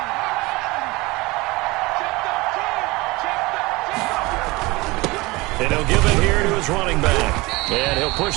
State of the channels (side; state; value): left; quieter; 22.7 dB